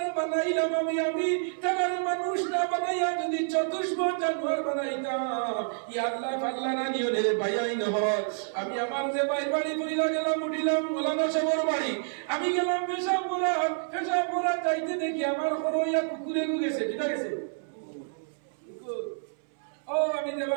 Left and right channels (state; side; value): silent; left; 59 dB below the other